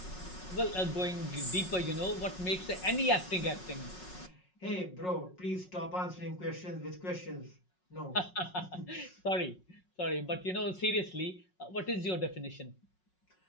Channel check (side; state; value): right; late; 5.4 ms